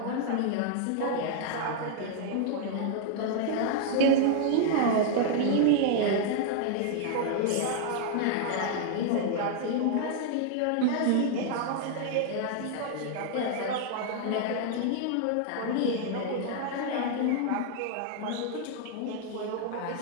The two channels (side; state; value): both; different; correlation 0.00